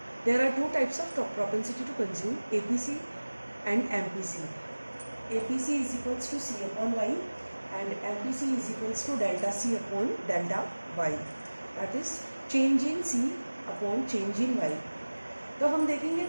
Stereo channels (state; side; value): inverted; both; correlation -1.00